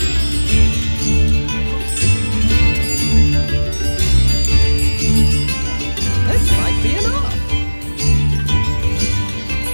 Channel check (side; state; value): both; inverted; correlation -1.00